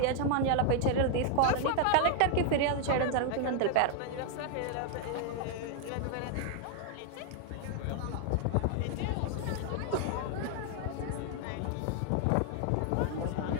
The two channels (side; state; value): both; different; correlation 0.00